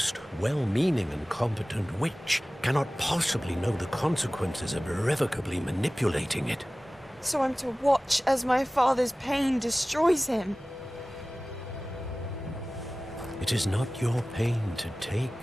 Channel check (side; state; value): both; normal; correlation 0.97